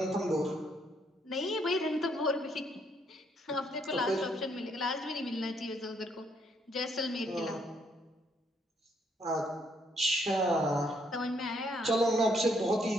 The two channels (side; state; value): both; normal; correlation 0.71